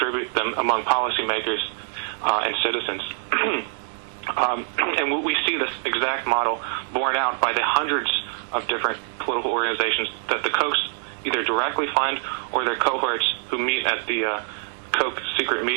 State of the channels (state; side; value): silent; left; digital silence